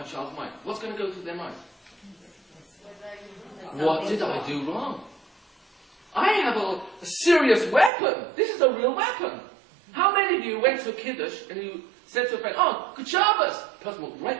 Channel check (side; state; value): left; drops out; at 7.9 s